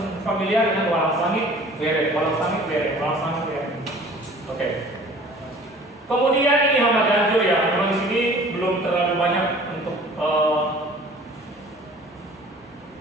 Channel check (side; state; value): both; normal; correlation 0.48